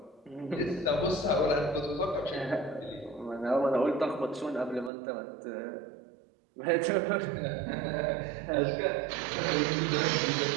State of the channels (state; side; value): drops out; left; at 4.9 s